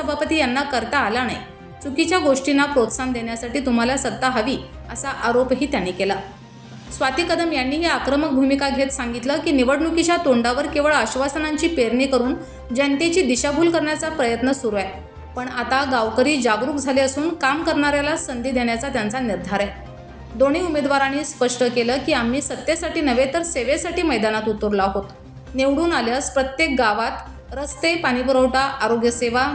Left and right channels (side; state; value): both; identical; correlation 1.00